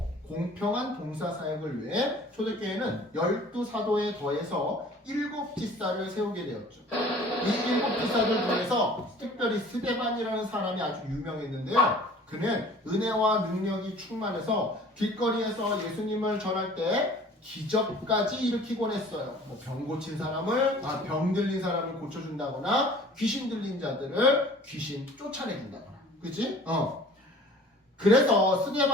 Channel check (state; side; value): normal; both; correlation 0.48